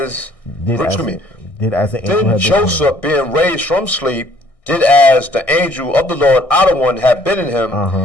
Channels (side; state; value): right; late; 1.6 ms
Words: being raised from sleep, did as the angel of the Lord out of one had bidden him,